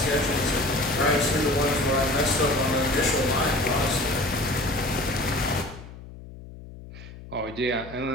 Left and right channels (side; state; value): left; noise; hum, 16 dB below the sound